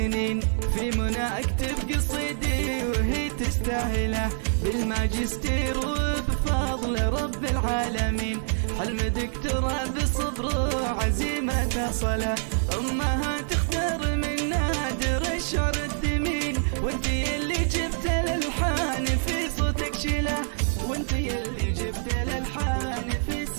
في منى اكتب قصيدي وهي تستاهله، بالماجستير وبفضل رب العالمين، حلم دكتوراه بصبر وعزيمة صلة، امها تختار من نادر الشعر الثمين، وانتي اللي جبت الالحان في صوتك شله، وانتي اللي جبت الالحان في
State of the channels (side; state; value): left; silent; 57 dB below the other